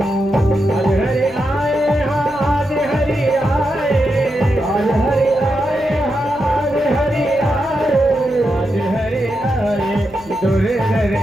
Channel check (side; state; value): left; noise; hum, 25 dB below the sound